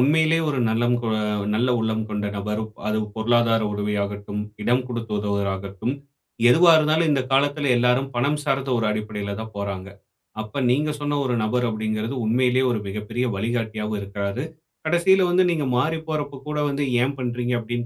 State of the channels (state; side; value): identical; both; correlation 1.00